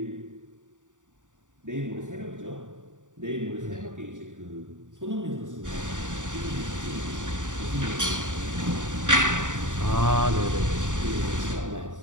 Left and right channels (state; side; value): late; left; 0.86 ms